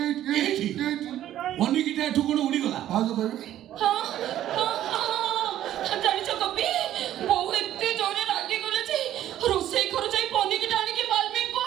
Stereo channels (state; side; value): quieter; left; 12.3 dB